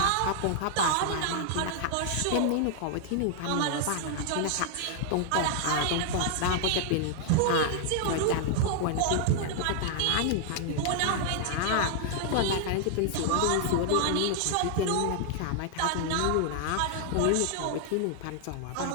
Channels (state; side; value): different; both; correlation 0.00